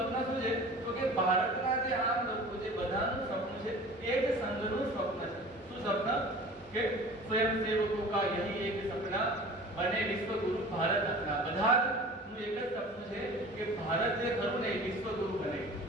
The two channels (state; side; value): normal; both; correlation 0.41